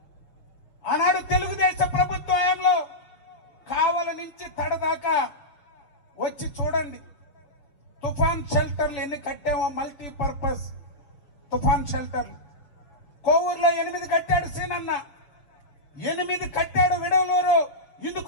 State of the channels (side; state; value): right; late; 6.9 ms